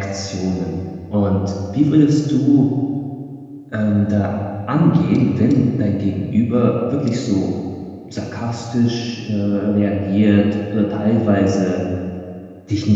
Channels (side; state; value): both; identical; correlation 1.00